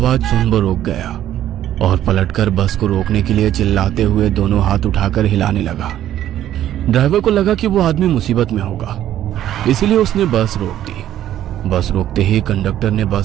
सुन वो रुक गया और पलटकर बस को रोकने के लिए चिल्लाते हुए दोनों हाथ उठाकर हिलाने लगा। ड्राइवर को लगा कि वो आदमी मुसीबत में होगा, इसलिए उसने बस रोक दी। बस रोकते ही कंडक्टर ने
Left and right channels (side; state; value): left; quieter; 12.0 dB